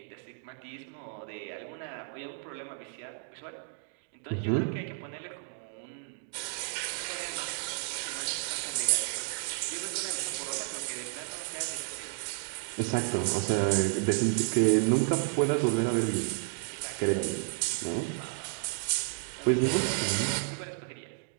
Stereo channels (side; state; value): left; silent; 56 dB below the other